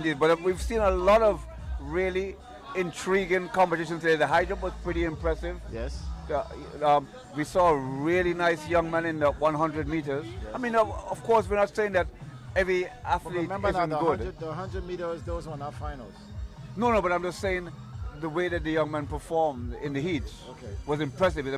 But we've seen a lot of really intriguing competitions today. The high jump was pretty impressive. Yes. We saw a really nice young man in the 100 meters. Yes. I mean, of course, we're not saying that every athlete isn't good. The 100 meters, those were not finals. No, but I'm just saying the way that the young man performed in the heats was impressive. I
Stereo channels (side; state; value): both; identical; correlation 1.00